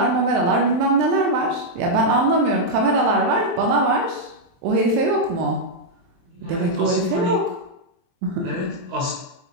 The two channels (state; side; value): late; left; 23 ms